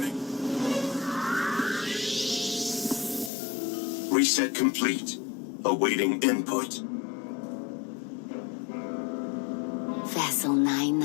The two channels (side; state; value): right; drops out; at 3.3 s